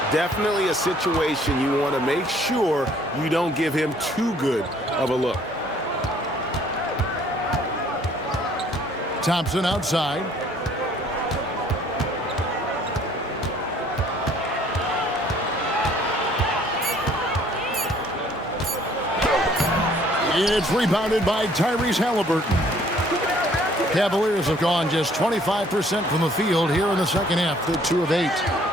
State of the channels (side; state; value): both; normal; correlation 0.59